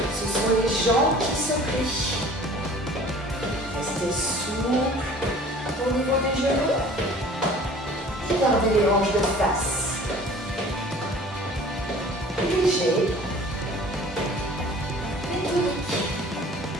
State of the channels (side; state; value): both; normal; correlation 0.47